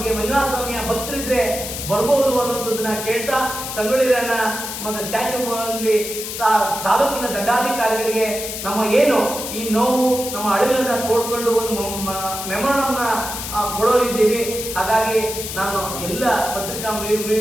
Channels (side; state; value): left; noise; hiss, 6 dB below the sound